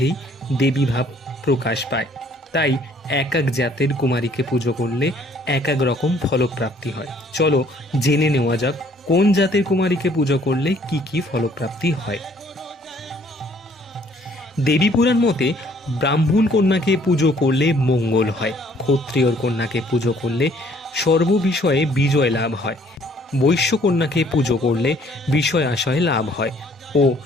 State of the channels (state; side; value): normal; both; correlation 0.61